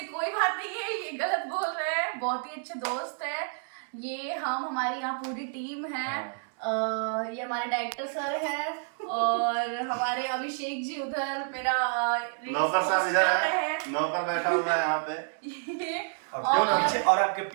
कोई बात नहीं है, ये गलत बोल रहे हैं। बहुत ही अच्छे दोस्त है ये। हमारी यहाँ पूरी टीम है। ये हमारे डायरेक्टर सर हैं और हमारे अभिषेक जी उधर मेरा नौकर साहब इधर है, नौकर बैठा हुआ है यहाँ पे। ये और आपके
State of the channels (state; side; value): silent; left; 58 dB below the other